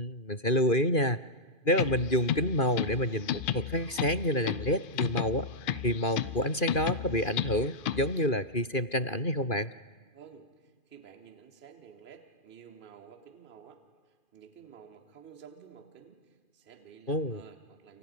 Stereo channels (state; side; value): late; right; 2.5 ms